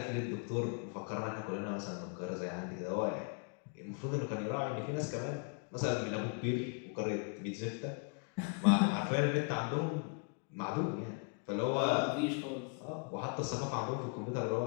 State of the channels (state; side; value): quieter; right; 36.9 dB